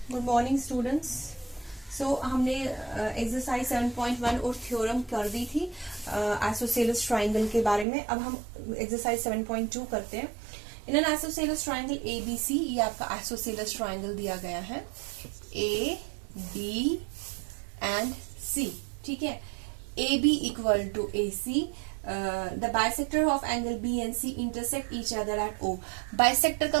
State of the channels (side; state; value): left; drops out; at 7.9 s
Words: Morning students. सो हमने exercise 7.1 और theorem कर दी थी आइसोसेलेस ट्राइंगल के बारे में। अब हम एक्सरसाइज 7.2 करते हैं। In an isosceles triangle ABC, ये आपका आइसोसेलेस ट्राइंगल दिया गया है A, B एंड C। ठीक है, AB equal to AC, the bisector of angle B and C intersect each other at O। Bisector का